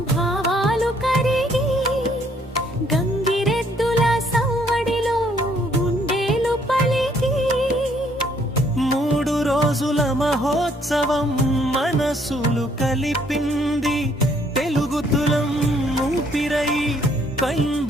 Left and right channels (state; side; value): normal; both; correlation 0.66